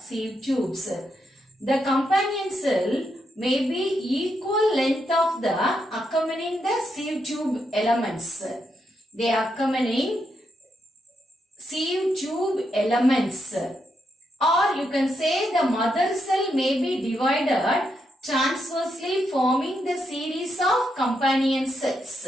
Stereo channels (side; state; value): both; normal; correlation 0.81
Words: tubes. The companion cell may be equal length of the accompanying the sieve tube elements. They accompanying sieve tube elements. Or you can say the mother cell may be divided transversely forming the series of companion